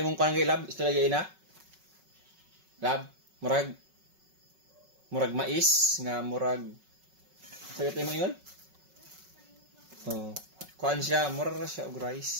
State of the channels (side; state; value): left; late; 5.4 ms